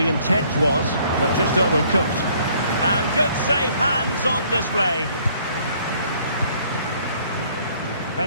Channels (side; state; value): both; inverted; correlation -0.61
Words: intent was, but just overcooked. And good safe hands on display.